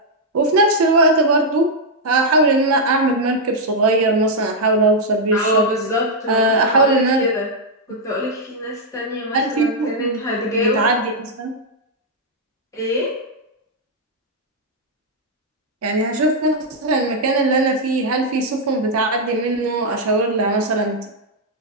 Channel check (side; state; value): both; normal; correlation -0.03